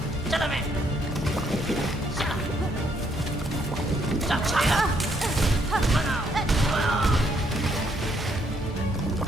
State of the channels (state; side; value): normal; both; correlation 0.71